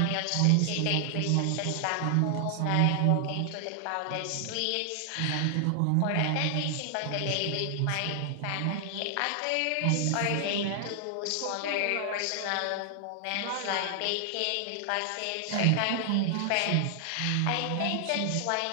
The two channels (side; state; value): both; different; correlation 0.00